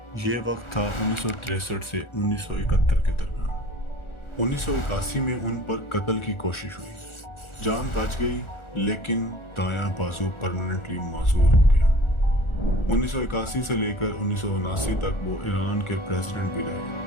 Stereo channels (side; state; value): right; late; 1.4 ms